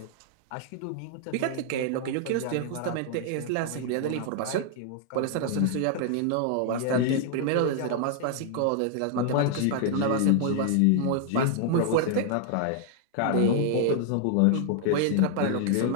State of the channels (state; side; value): different; both; correlation 0.00